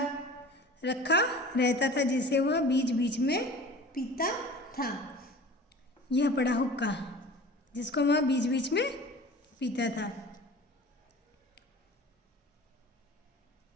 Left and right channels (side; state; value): both; normal; correlation 0.41